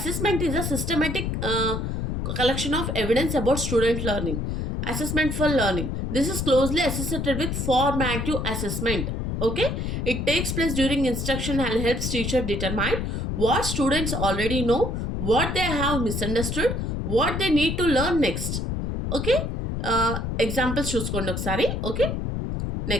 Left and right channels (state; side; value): noise; left; rumble, 2 dB below the sound